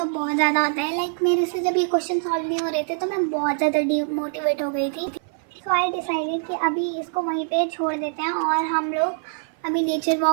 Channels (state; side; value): silent; left; 56 dB below the other